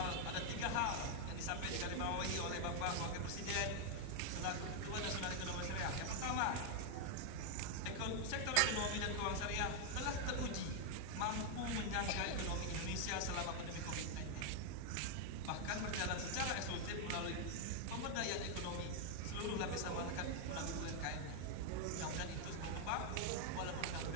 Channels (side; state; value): both; different; correlation 0.00